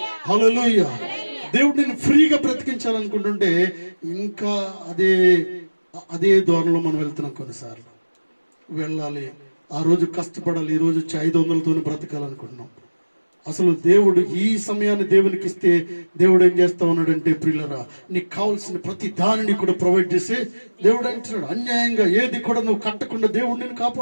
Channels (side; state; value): both; inverted; correlation -1.00